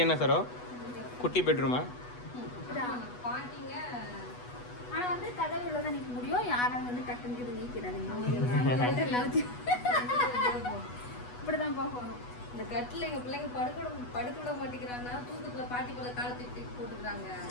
என்ன சாரோ? குட்டி பெட்ரூமா? பாட்டிங்க. ஆனா வந்து கதவுல தான் நிக்க முடியும். யாரும் வந்து டக்குன்னு நீக்கிறாங்க. இப்படிதான் போகணும். இந்த கட்டில எங்க பிள்ளைங்க படுக்க விட மாட்டேங்கிறாங்கன்னா, தூக்கத்துல பாட்டி போல காலை தூக்கி போட்டுக்கிறாங்க.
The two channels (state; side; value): late; right; 8.2 ms